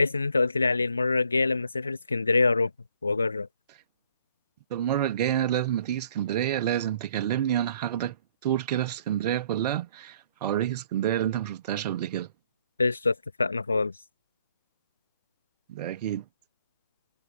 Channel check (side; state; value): both; inverted; correlation -0.63